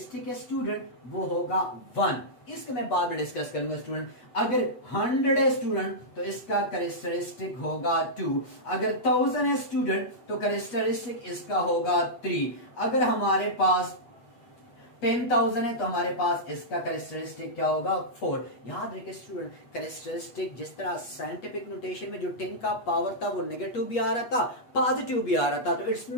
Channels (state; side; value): late; right; 8.2 ms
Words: है स्टूडेंट वो होगा 1। इसको मैं बाद में डिस्कस करूंगा स्टूडेंट। अगर 100 है स्टूडेंट तो इसका कैरेक्टरिस्टिक होगा 2। अगर 1000 है स्टूडेंट तो कैरेक्टरिस्टिक इसका होगा 3। अगर हमारे पास 10,000 है तो हमारे पास इसका कैरेक्टरिस्टिक क्या होगा 4। याद रखिए स्टूडेंट, कैरेक्टरिस्टिक जिस तरह साइंटिफिक नोटेशन में जो 10 का पावर था वो नेगेटिव भी आ रहा था, पॉजिटिव भी आ रहा था। तो इट्स